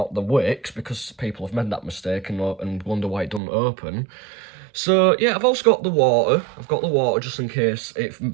the wicks, because people have made that mistake and wonder why it doesn't open. So yeah, I've also got the water. I've got the water just in case it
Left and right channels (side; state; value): left; drops out; at 3.4 s